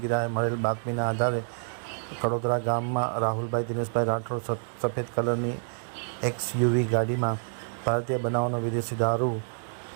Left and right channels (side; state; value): left; silent; digital silence